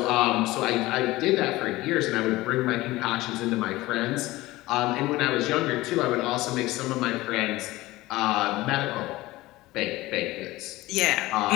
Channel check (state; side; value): quieter; right; 18.7 dB